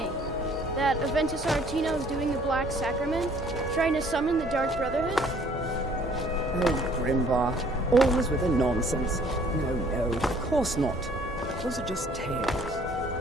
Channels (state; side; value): normal; both; correlation 0.58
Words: That Aventus Aretino is doing the Black Sacrament, trying to summon the Dark Brotherhood? Oh, Grimvar. Always with the nonsense. No, of course not. Those are just tales.